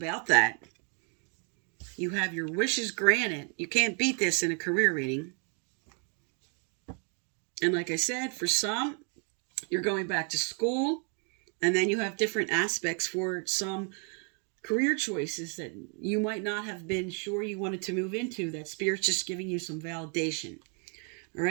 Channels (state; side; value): quieter; left; 38.5 dB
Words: that. You have your wishes granted. You can't beat this in a career reading. And like I said, for some, you're going back to school. And then you have different aspects for some career choices that you might not have been sure you wanted to move into. That Spirit's just giving you some validation. All